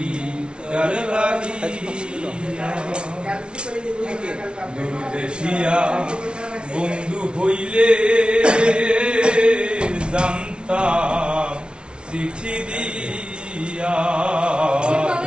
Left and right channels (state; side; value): late; left; 0.057 ms